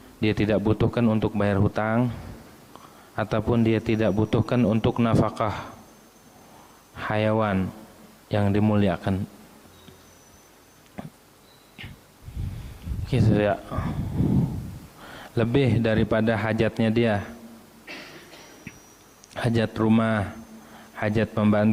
dia tidak butuhkan untuk bayar hutang, ataupun dia tidak butuhkan untuk nafkah hayawan yang dimuliakan. Gitu ya, lebih daripada hajatnya dia, hajat rumah, hajat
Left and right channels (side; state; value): both; identical; correlation 1.00